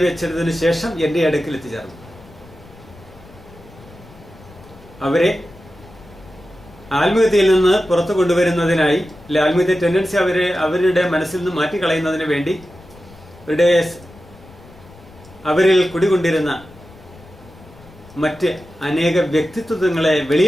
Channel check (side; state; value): left; noise; rumble, 22 dB below the sound